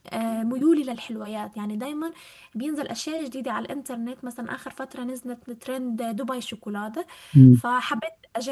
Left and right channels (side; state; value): both; identical; correlation 1.00